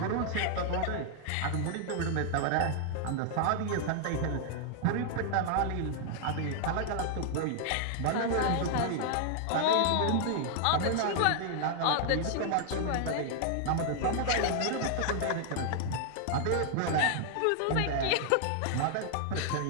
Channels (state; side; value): different; both; correlation 0.00